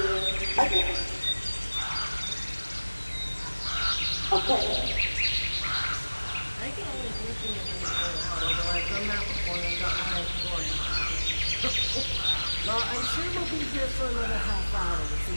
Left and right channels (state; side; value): inverted; both; correlation -1.00